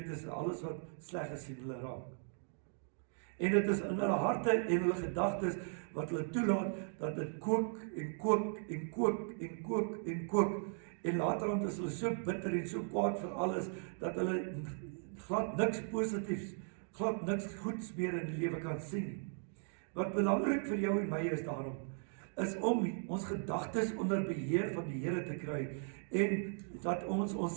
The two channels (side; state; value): left; silent; 53 dB below the other